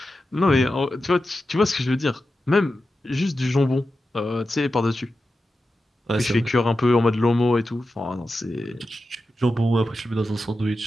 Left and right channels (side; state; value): both; normal; correlation 0.91